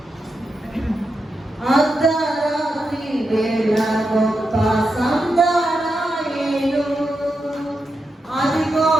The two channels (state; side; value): normal; both; correlation 0.87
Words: అర్ధరాత్రి వేళ గొప్ప సందడాయేను, అదిగో